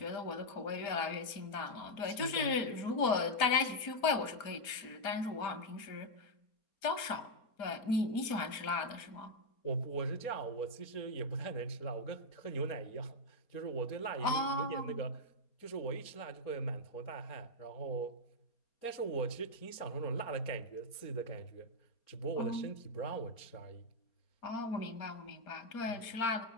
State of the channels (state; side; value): late; right; 4.3 ms